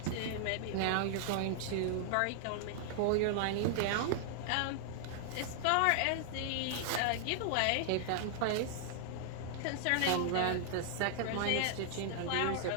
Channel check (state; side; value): different; both; correlation -0.01